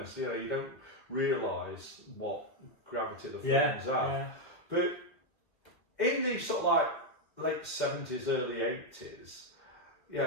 you don't realise what gravity the films have. Yeah. But in the sort of like late 70s, early 80s,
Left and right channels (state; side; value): late; right; 2.4 ms